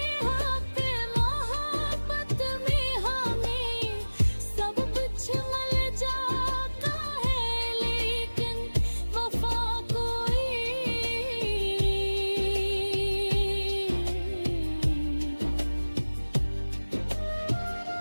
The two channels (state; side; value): inverted; both; correlation -1.00